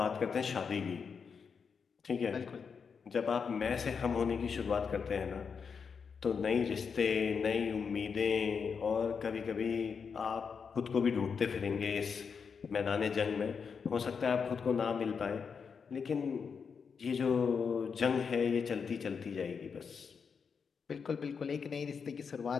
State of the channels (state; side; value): quieter; right; 6.0 dB